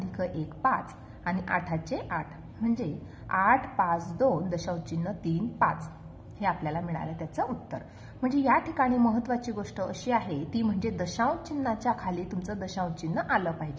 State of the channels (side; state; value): both; identical; correlation 1.00